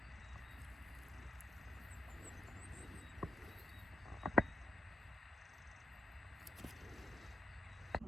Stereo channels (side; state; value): both; normal; correlation 0.84